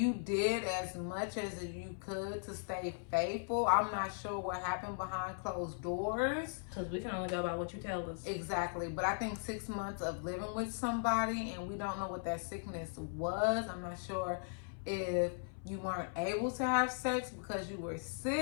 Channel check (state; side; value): silent; right; 52 dB below the other